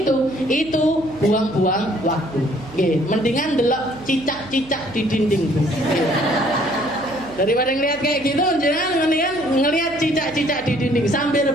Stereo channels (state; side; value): noise; right; hum, 21 dB below the sound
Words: buang-buang waktu. Mendingan delok cicak-cicak di dinding. Daripada ngelihat kayak gitu, jangan mendingan ngelihat cicak-cicak di dinding sambil